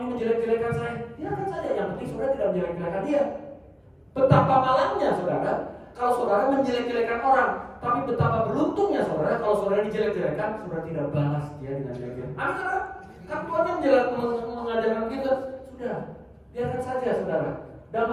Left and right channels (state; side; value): identical; both; correlation 1.00